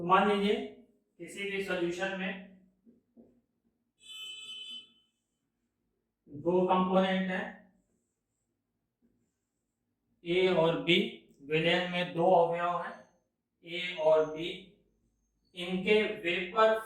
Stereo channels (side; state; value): both; identical; correlation 1.00